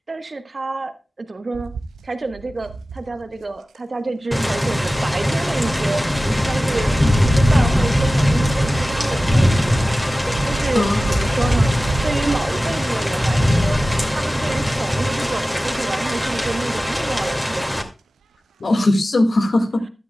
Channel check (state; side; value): normal; both; correlation 0.96